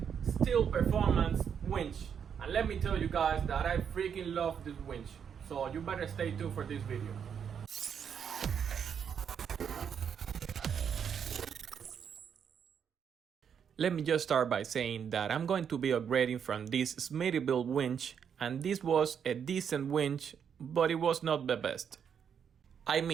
steel performance winch. And let me tell you guys that I freaking love this winch. So you better stay tuned for this video. Let me just start by saying that I'm going to be upgrading from this Smittyville winch, and this was a decent winch, but it was not the best. I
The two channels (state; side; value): quieter; left; 7.7 dB